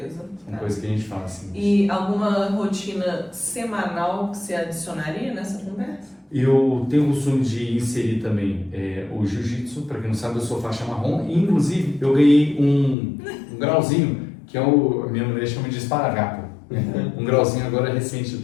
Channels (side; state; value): right; drops out; at 13.0 s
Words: são coisas que a gente faz. Assim. E alguma rotina semanal que você adicionaria nessa conversa? Eu tenho o costume de inserir também o jiu-jitsu. Para quem não sabe, eu sou faixa marrom. E, inclusive, eu ganhei um grauzinho, que a minha mulher chama de esparadrapo. Um grauzinho agora recente,